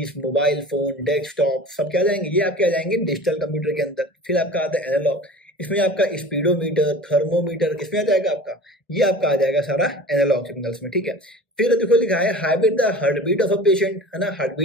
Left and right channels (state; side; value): normal; both; correlation 0.39